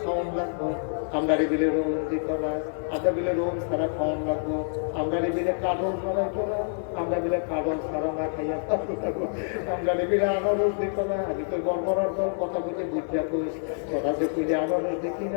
লাগবো আমরা বিলে রোম দিত না আমরা বিলে রোম ছাড়া খাওয়ান লাগবো আমরা বিলে কাঠল ছাড়াইতো না আমরা বিলে কাঠল ছাড়া না খাইয়া থাকবো আমরা বিলে আনারস দিত না আমি তো গড়বড়ার দল কথা বলতে বুঝিয়া কইস তোরা যে কইলে আনারস দেখি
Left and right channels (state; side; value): silent; right; 60 dB below the other